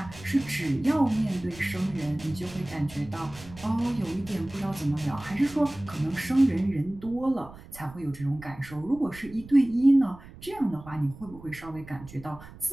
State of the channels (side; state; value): right; noise; rumble, 18 dB below the sound